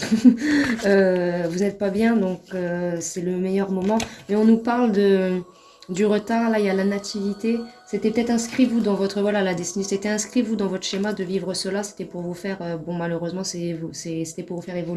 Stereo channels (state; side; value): identical; both; correlation 1.00